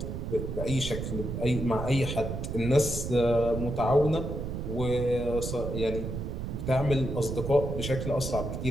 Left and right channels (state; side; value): noise; right; rumble, 4 dB below the sound